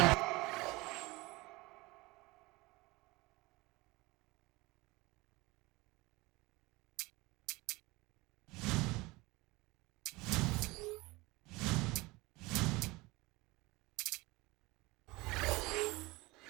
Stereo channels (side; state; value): left; quieter; 22.4 dB